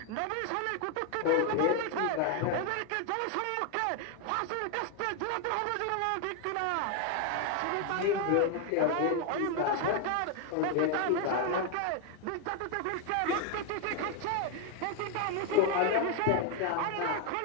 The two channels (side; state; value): both; different; correlation 0.01